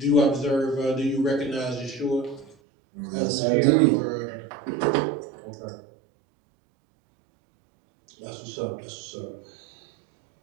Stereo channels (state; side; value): drops out; left; at 2.6 s